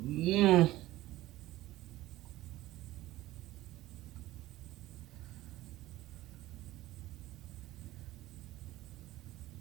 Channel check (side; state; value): left; quieter; 16.6 dB